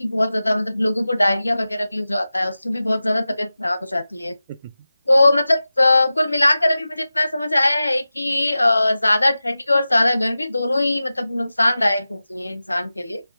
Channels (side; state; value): both; inverted; correlation -0.95